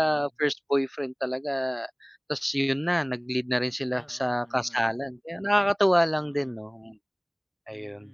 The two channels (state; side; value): identical; both; correlation 1.00